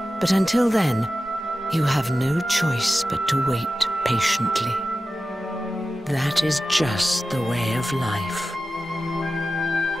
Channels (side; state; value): both; normal; correlation 0.93